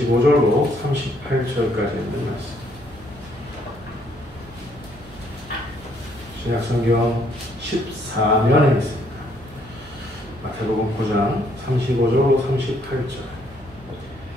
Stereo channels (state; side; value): noise; right; hum, 22 dB below the sound